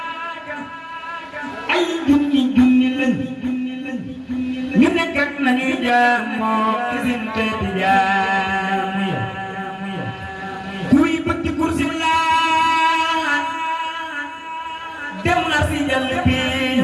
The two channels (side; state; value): both; identical; correlation 1.00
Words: ay junni lañ ñu nekk ak nañuy jaamoo ci seen teeti jaamu ya kuy bëgg kursi laa dem na si jàll bi